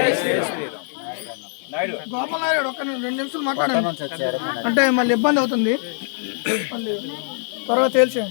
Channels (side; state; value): right; silent; 55 dB below the other